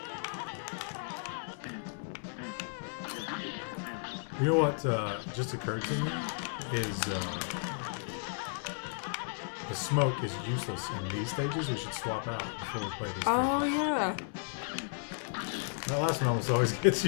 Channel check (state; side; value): silent; right; 55 dB below the other